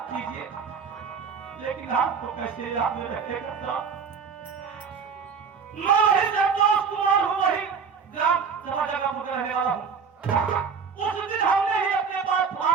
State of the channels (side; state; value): left; quieter; 6.0 dB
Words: कीजिए, लेकिन आपको कैसे याद में रहेगा साहब? मैं वही संतोष कुमार हूँ, वही ग्राम सभा जगह में रहने वाला हूँ। उस दिन हमने ही अपने पास